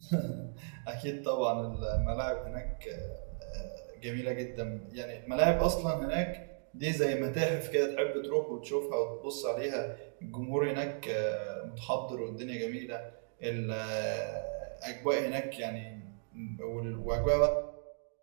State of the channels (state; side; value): silent; left; digital silence